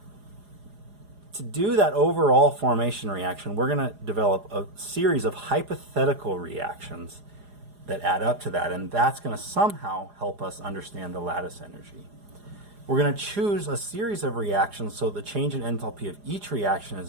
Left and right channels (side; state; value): left; late; 4.9 ms